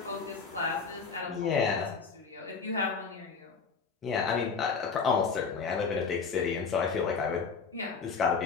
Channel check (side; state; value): right; quieter; 5.3 dB